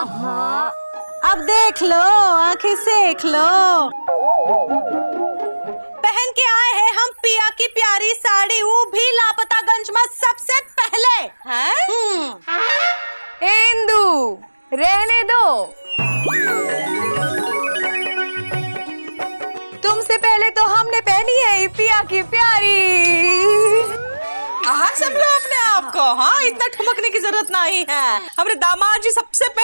अब देख लो, आंखें सेक लो। पहन के आए हैं हम पिया की प्यारी साड़ी, वो भी लापतागंज में सबसे पहले। इंदू रहने दो, तुमसे पहले तो हमने पहनी है पिया की प्यारी। सब लोग अपने आप को, हाँ इतना ठुमकने की जरूरत नहीं है। हमारे दामाद जी सबसे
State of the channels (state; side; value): inverted; both; correlation -1.00